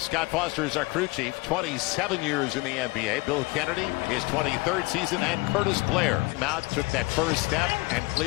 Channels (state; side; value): quieter; right; 23.7 dB